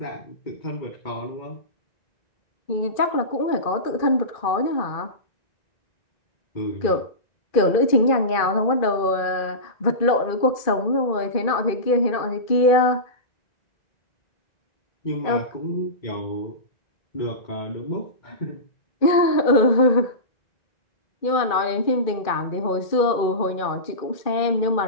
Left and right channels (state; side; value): late; right; 2.4 ms